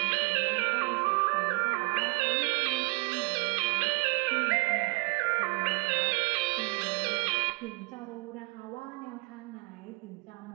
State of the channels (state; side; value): quieter; left; 30.6 dB